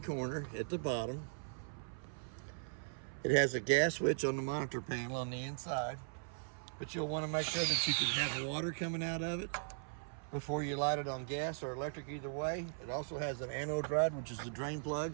corner at the bottom. It has a gas switch on the monitor panel on the inside, but you'll want to make sure that you can have water coming out of it before you light it on gas or electric, either way. It also has an anode rod, which is the drain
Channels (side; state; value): left; silent; 52 dB below the other